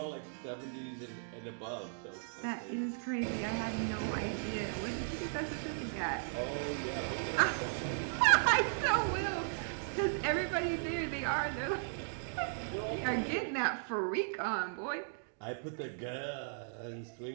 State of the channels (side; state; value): left; silent; digital silence